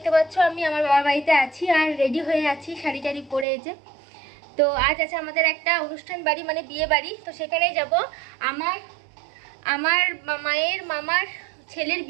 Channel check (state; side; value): drops out; left; at 3.5 s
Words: পাচ্ছ আমি আমার বাবার বাড়িতে আছি আর রেডি হয়ে আছি শাড়ি টাড়ি পরে। এই যে তো আজ আছে আমাদের একটা অনুষ্ঠান বাড়ি, মানে বিয়ে বাড়ি। তো সেখানেই যাব। আমার মায়ের মামার ছেলের